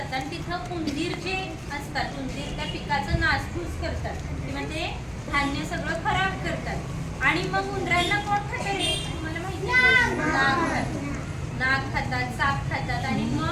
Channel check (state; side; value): identical; both; correlation 1.00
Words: आणि तिथं उंदीर जे असतात, उंदीर त्या पिकाचं नासधूस करतात किंवा ते धान्य सगळं खराब करतात. आणि मग उंदरांना कोण खातं रे? मला माहिती आहे, नाग खातात, साप खातात. आणि